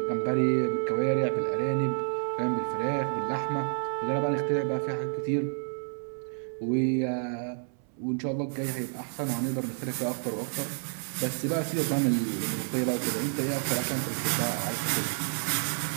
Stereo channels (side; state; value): left; silent; 58 dB below the other